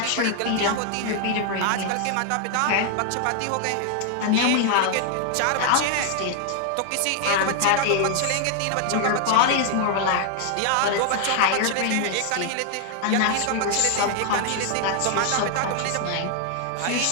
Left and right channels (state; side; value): different; both; correlation 0.00